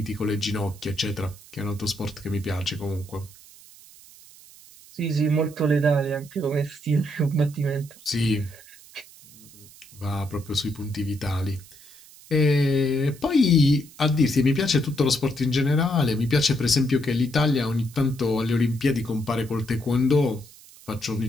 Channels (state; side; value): noise; right; hiss, 22 dB below the sound